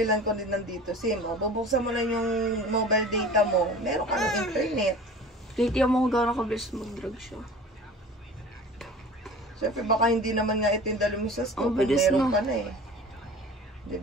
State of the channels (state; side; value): normal; both; correlation 0.41